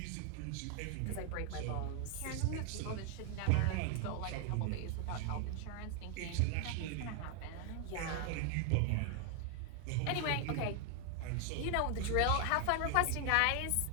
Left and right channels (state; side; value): different; both; correlation 0.00